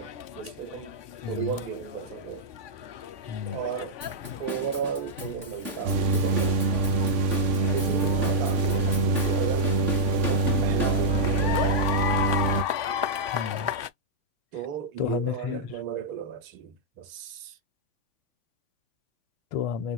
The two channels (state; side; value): late; left; 3.5 ms